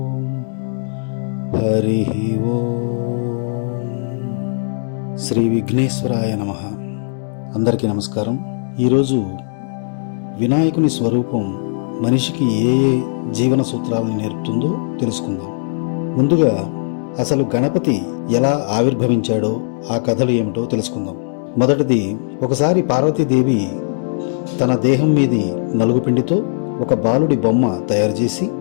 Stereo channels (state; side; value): silent; right; digital silence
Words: హరి ఓం. శ్రీ విఘ్నేశ్వరాయ నమః. అందరికీ నమస్కారం. ఈరోజు వినాయకుని స్వరూపం మనిషికి ఏ జీవన సూత్రాలను నేర్పుతుందో తెలుసుకుందాం. ముందుగా అసలు గణపతి ఎలా ఆవిర్భవించాడో ఆ కథలు ఏమిటో తెలుసుకుందాం. మొదటిది, ఒకసారి పార్వతీదేవి తన దేహం మీది నలుగుపిండితో ఒక బాలుడి బొమ్మ తయారు చేసి